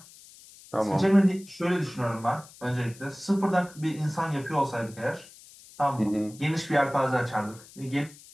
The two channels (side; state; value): left; noise; hiss, 21 dB below the sound